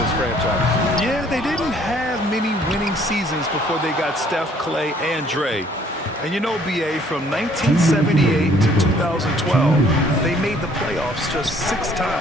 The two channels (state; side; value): normal; both; correlation 0.60